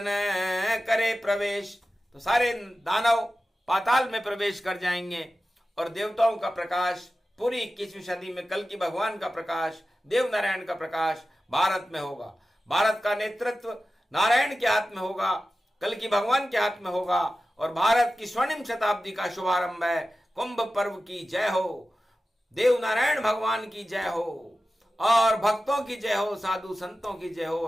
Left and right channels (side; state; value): both; normal; correlation 0.94